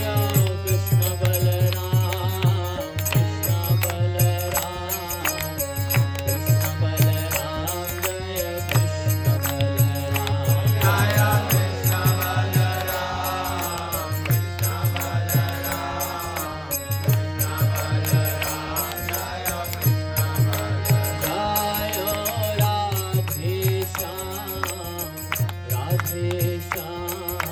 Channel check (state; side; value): identical; both; correlation 1.00